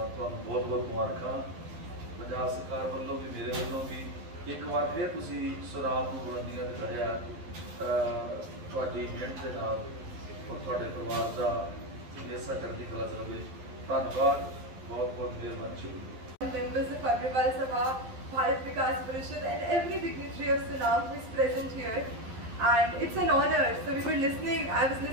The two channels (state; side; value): late; left; 12 ms